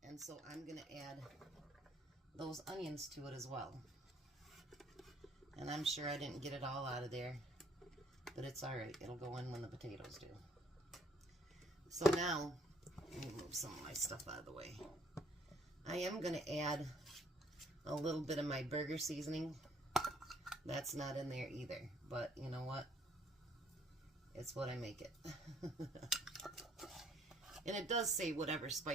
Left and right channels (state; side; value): normal; both; correlation 0.63